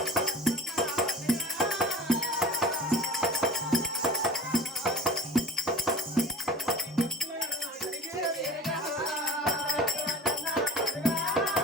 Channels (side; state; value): both; normal; correlation 0.41